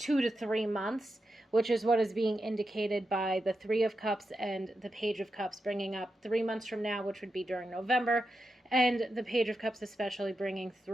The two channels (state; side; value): normal; both; correlation 0.88